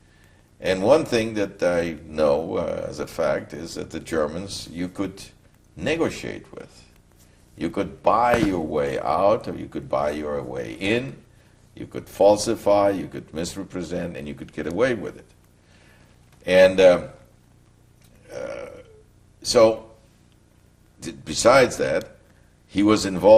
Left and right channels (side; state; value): both; identical; correlation 1.00